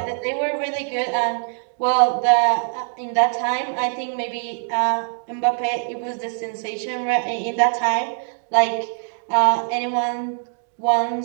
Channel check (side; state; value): left; silent; 64 dB below the other